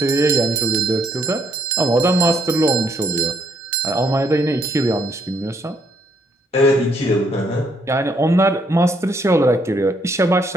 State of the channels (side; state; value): both; normal; correlation 0.70